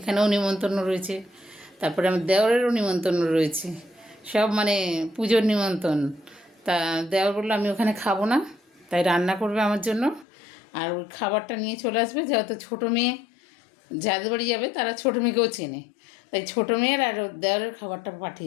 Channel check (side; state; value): right; drops out; at 10.2 s